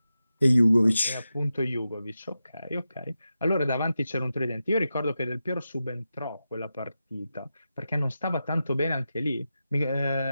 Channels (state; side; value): inverted; both; correlation -0.91